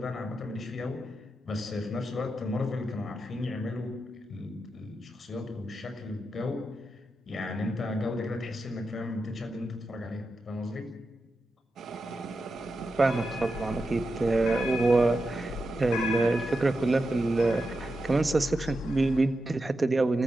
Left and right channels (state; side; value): normal; both; correlation 0.89